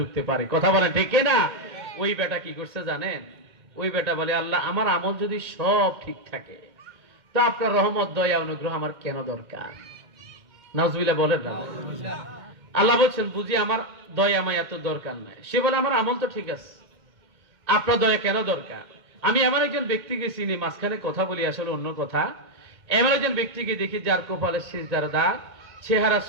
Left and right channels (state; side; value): late; left; 2.1 ms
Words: পারে। কথা বলেন ঠিক না? ওই বেটা কি করছে জানেন? ওই বেটা বলে, আল্লাহ আমার আমল যদি সব ঠিক থাকে তো আপনার রহমত দয়া অনুগ্রহ আমার কেন দরকার? নাউজুবিল্লাহ বলেন না। আল্লাহ বলছেন, বুঝি আমার দয়া মায়া তো দরকার নাই। সে বলে, আমার আমল তো ঠিক আছে, আপনার দয়া কেন দরকার? আমি এমন একজন ব্যক্তিকে চিনি, মাঝখানে কথা বলি আসলে অন্য কথা, এমন একজন ব্যক্তিকে দেখি যার কপালে সিজদার দাগ, চেহারা